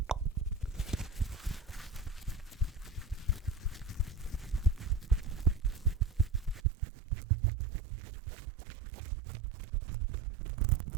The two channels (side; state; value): left; drops out; at 6.6 s